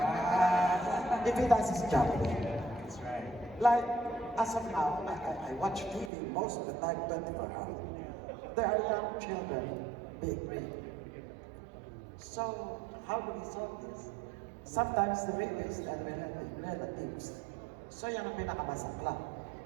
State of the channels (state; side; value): drops out; left; at 6.1 s